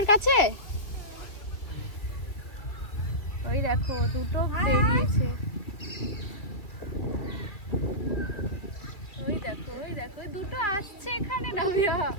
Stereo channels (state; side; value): late; right; 2.2 ms